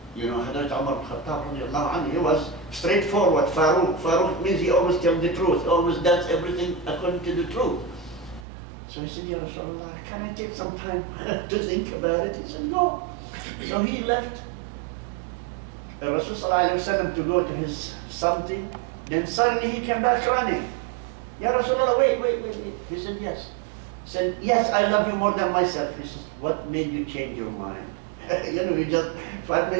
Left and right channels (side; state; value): left; drops out; at 8.5 s